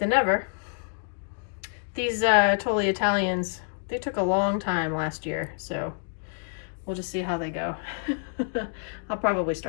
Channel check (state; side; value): silent; right; digital silence